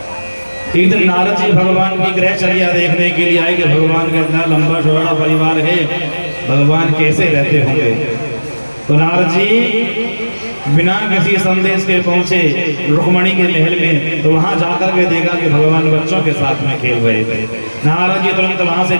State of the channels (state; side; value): inverted; both; correlation -1.00